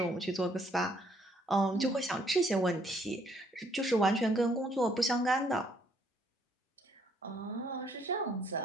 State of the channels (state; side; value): normal; both; correlation 0.67